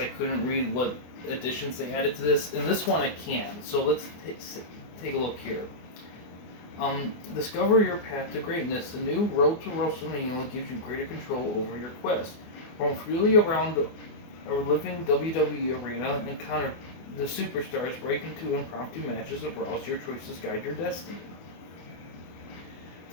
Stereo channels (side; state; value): right; late; 24 ms